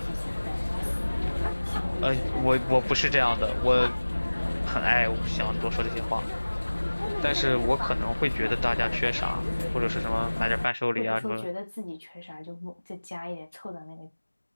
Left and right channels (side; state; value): both; inverted; correlation -1.00